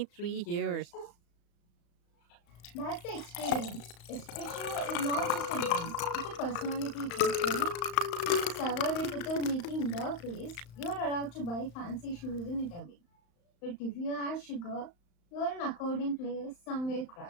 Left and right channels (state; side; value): late; right; 35 ms